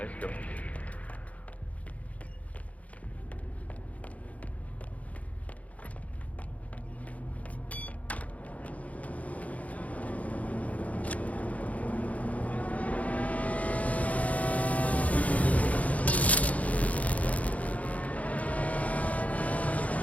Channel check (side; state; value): right; late; 0.069 ms